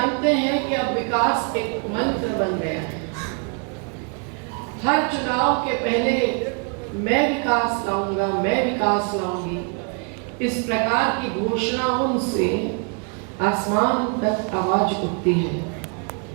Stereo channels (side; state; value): left; quieter; 38.2 dB